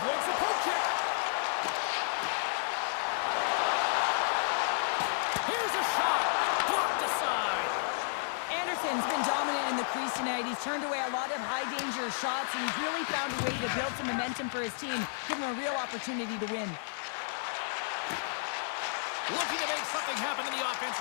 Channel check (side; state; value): right; silent; digital silence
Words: the poke check. Here's a shot. Blocked aside. Anderson's been dominant in the crease tonight. He's turned away a lot of high-danger shots, and he's really found a way to build some momentum for his team, give him a real opportunity to win. Looking to make something happen in the